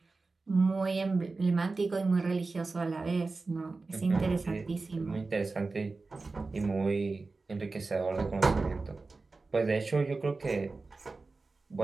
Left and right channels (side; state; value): left; quieter; 3.7 dB